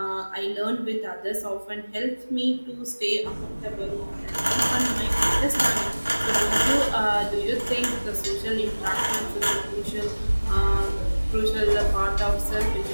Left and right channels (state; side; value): inverted; both; correlation -1.00